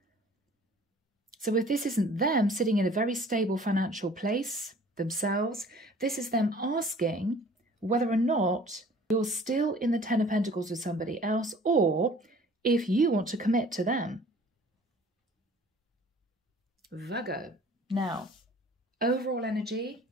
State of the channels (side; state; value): both; normal; correlation 0.50